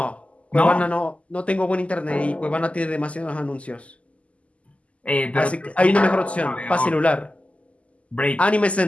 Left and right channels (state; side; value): late; right; 0.063 ms